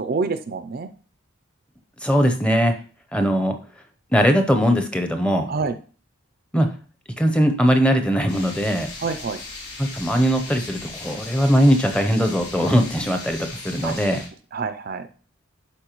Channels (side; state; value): both; normal; correlation 0.81